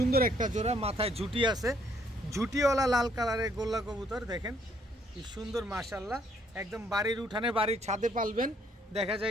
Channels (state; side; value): normal; both; correlation 0.67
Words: একটা জোড়া। মাথায় ঝুটি আছে, ঝুটিওয়ালা লাল কালারের গোল্লা কবুতর। দেখেন কি সুন্দর মাশাআল্লাহ। একদম বাড়ির উঠানে, বাড়ির ছাদে পালবেন, দেখা